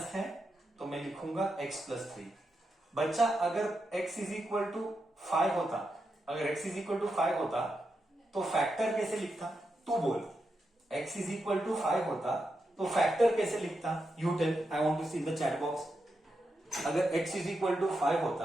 है तो मैं लिखूंगा x प्लस 3. बच्चा, अगर x इज इक्वल टू 5 होता, अगर x इज इक्वल टू 5 होता तो फैक्टर कैसे लिखता? तू बोल. x इज इक्वल टू 5 होता तो फैक्टर कैसे लिखता? You tell. I want to see in the chat box. अगर x इज इक्वल टू 5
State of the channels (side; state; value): both; normal; correlation 0.86